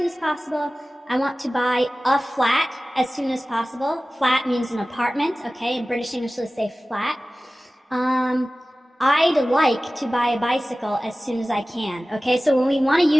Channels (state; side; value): normal; both; correlation 0.97